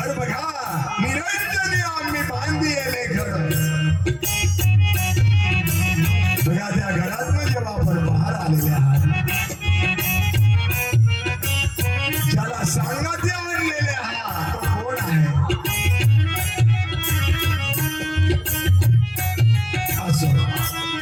बघा, निरंजनी आम्ही बांधिले घर. बघा त्या घरातून जेव्हा आपण बाहेर आलेले आहात, ज्याला सांगाते आणलेले आहात तो कोण आहे? असं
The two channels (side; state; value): both; identical; correlation 1.00